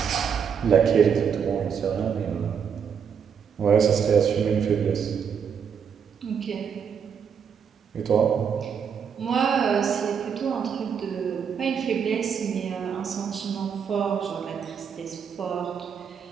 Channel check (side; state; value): left; quieter; 7.1 dB